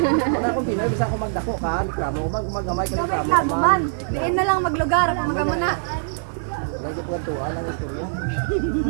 Wala akong Pinoy bisa ako magdako ka, reklamo maggamay ka reklamo. man. Diin na lang maglugar. Ako magamuna. Lagi po tuwa ng istorya.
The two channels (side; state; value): left; silent; 63 dB below the other